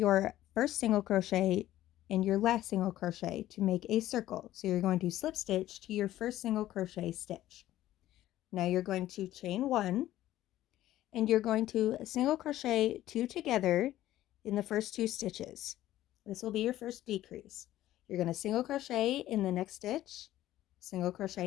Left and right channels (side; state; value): right; quieter; 14.1 dB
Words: first single crochet and your last single crochet to make a circle. So you're going to slip stitch to your first single crochet stitch. Now you're going to chain 1 and you're going to single crochet 2 together in the first 2 stitches. This will be your first decrease. You're going to single crochet in the next stitch, single crochet